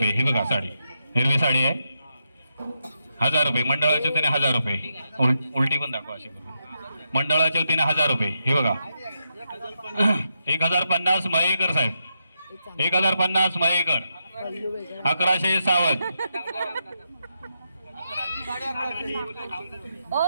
ही बघा साडी, हिरवी साडी आहे, 1000 रुपये. मंडळाच्या वतीने 1000 रुपये. उलटी पण दाखवा अशी करून. मंडळाच्या वतीने 1000 रुपये. हे बघा 1050. मयेकर साहेब 1050. मयेकर 1100. सावंत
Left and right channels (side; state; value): both; inverted; correlation -0.83